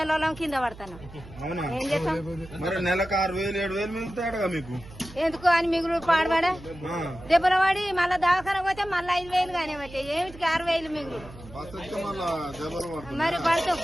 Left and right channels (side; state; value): right; noise; hum, 17 dB below the sound